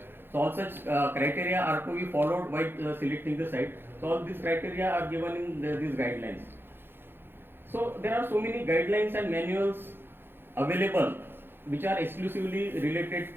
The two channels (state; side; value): late; left; 0.10 ms